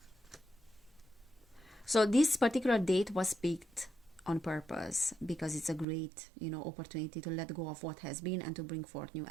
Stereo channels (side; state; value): left; drops out; at 5.9 s